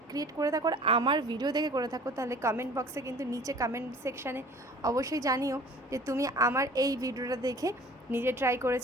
করে থাকো আর আমার ভিডিও দেখে করে থাকো, তাহলে কমেন্ট বক্সে কিন্তু নিচে কমেন্ট সেকশানে অবশ্যই জানিও যে তুমি আমার এই ভিডিওটা দেখে নিজে ট্রাই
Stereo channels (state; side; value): normal; both; correlation 0.47